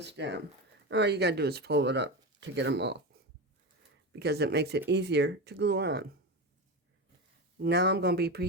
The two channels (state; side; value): normal; both; correlation 0.20